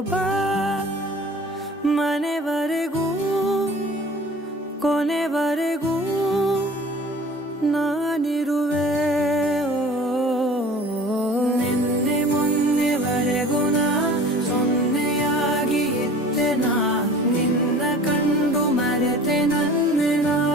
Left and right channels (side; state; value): both; normal; correlation 0.44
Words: ಬಾ ಮನೆವರೆಗೂ ಕೊನೆವರೆಗೂ ನಾನಿರುವೆ ನಿನ್ನೆ ಮೊನ್ನೆವರೆಗೂ ನಾ ಸೊನ್ನೆಯಾಗಿ ಇದ್ದೆ ನಾ ನಿನ್ನ ಕಂಡು ಮರೆತೆ ನನ್ನೆನಾ